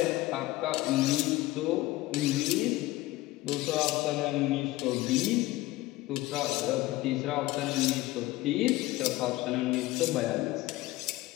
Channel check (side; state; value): right; quieter; 18.1 dB